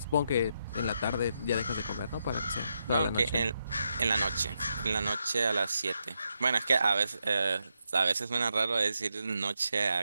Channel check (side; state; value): both; inverted; correlation -0.82